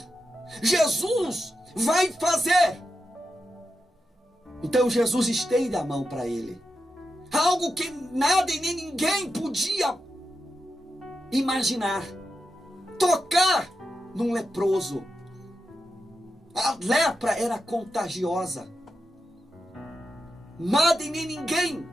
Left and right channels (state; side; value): normal; both; correlation 0.89